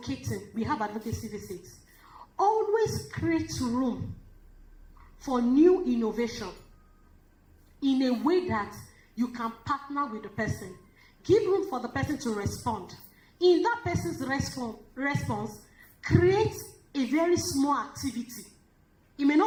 we have advocacy visits, always create room for new innovation in a way that you can partner with the person. Give room for the person to respond. In that person's response, create a very small activity. It may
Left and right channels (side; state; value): both; identical; correlation 1.00